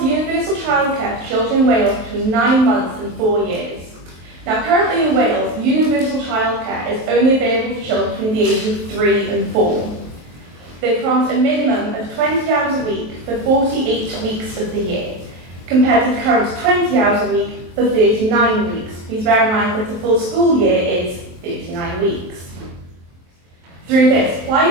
universal childcare to children in Wales between 9 months and 4 years. Now, currently in Wales, universal childcare is only available for children between the ages of 3 and 4. They promised a minimum of 20 hours a week for 48 weeks of the year, compared to the current 20 hours a week for 39 weeks. Please bear in mind that the full school year is 39 weeks. Through this,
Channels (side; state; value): left; late; 23 ms